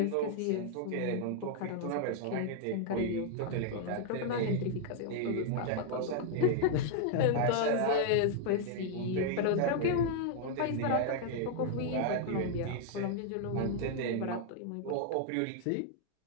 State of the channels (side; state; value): both; different; correlation 0.00